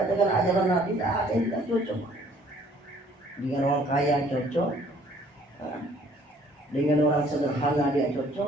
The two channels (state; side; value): normal; both; correlation 0.59